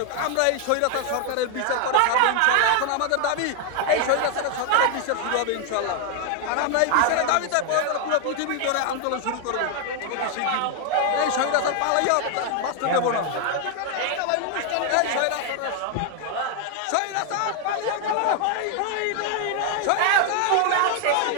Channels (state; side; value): different; both; correlation 0.00